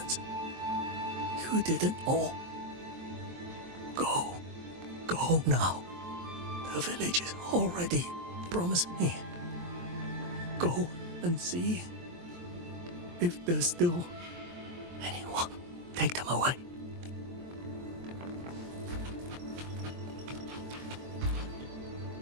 You didn't all. Go now. The village is already promised me. Go and see if there's still anyone. Take them away.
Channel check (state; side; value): late; left; 23 ms